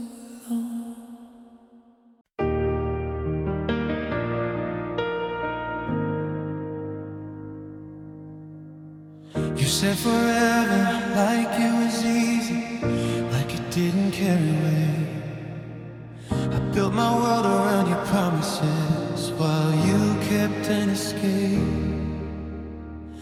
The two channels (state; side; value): identical; both; correlation 1.00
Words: long. You said forever, like it was easy, like it didn't carry weight. I built my world around your promises, while you kept an escape.